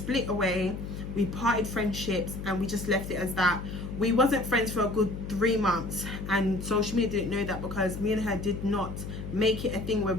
away, we parted friendships, and we just left it as that. We wasn't friends for a good 3 months, and social media didn't know that, because me and her did not make it a thing where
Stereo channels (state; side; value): noise; left; hum, 7 dB below the sound